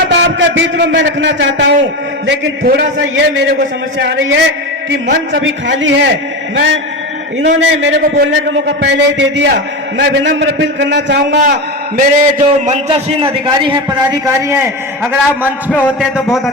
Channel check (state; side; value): normal; both; correlation 0.21